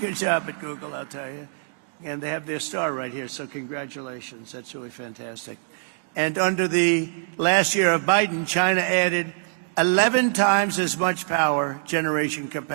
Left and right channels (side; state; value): left; silent; digital silence